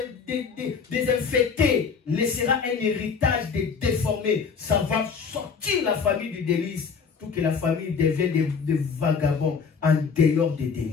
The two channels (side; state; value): right; quieter; 5.8 dB